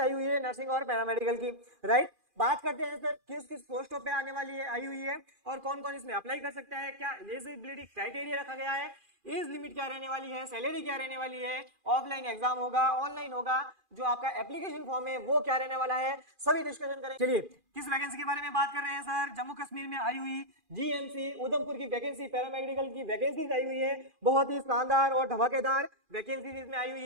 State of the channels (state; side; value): late; left; 2.4 ms